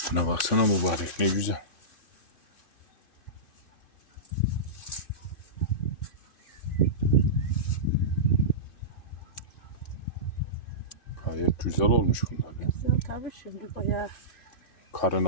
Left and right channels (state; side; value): late; right; 2.5 ms